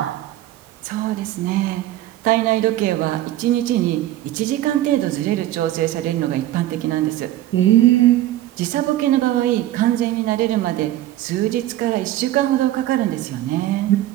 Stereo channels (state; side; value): quieter; left; 14.3 dB